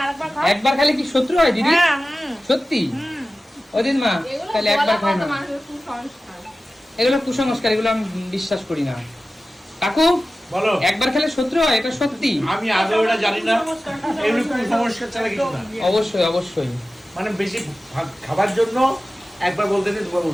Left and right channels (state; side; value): normal; both; correlation 0.95